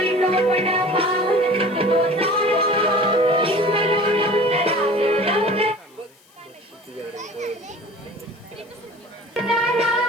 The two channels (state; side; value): noise; left; hiss, 30 dB below the sound